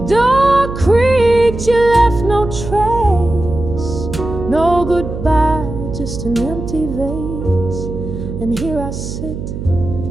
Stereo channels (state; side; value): noise; right; hum, 7 dB below the sound